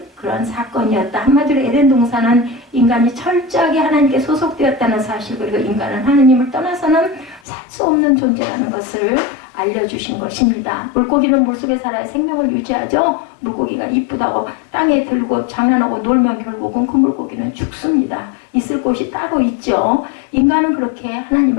그런 사건이었다. 한마디로 에덴 동산은 인간이 철저하게 하나님께 소속되었다는 사실, 그리고 인간은 하나님을 떠나서는 살 수 없는 존재라는 것을 알려주신 것입니다. 물고기는 물속에 살아야 생명을 유지하죠. 물고기가 이쁘다고 땅에 들고 장난하고 놀면 결국은 그 물고기는 죽습니다. 있을 곳이 따로 있죠. 인간은 그렇게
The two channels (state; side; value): drops out; right; at 7.4 s